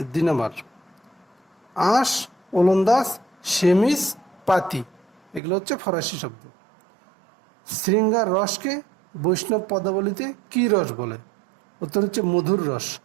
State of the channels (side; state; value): left; drops out; at 5.4 s